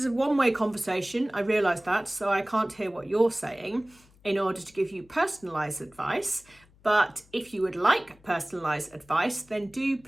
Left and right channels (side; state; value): left; noise; hum, 29 dB below the sound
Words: a one-way conversation. I realise that, so I can't hear what you're saying in order to give you personalised advice. But if you would like personalised advice, then do